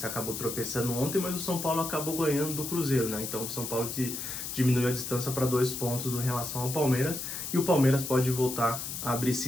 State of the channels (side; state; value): left; noise; hiss, 6 dB below the sound